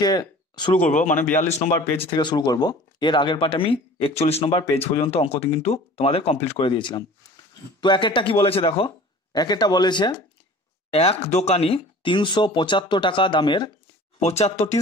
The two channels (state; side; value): normal; both; correlation 0.44